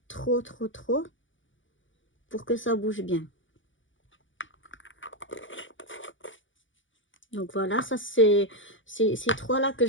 trop, pour que ça bouge bien. Donc voilà, ça c'est ces trois-là que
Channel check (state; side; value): late; right; 0.56 ms